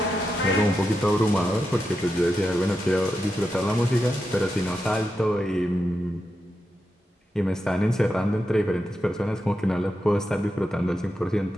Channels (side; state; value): both; normal; correlation 0.87